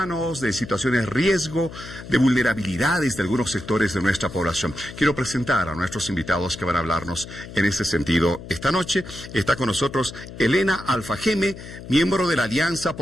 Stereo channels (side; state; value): left; noise; hum, 13 dB below the sound